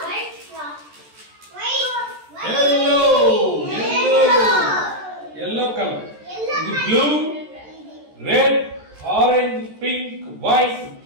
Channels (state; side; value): late; left; 14 ms